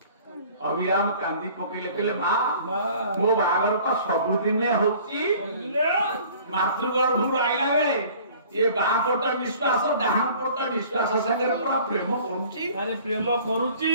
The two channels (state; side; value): inverted; both; correlation -0.50